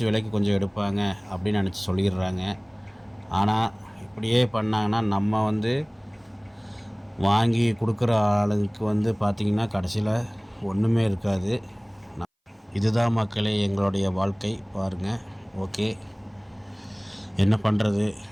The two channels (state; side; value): identical; both; correlation 1.00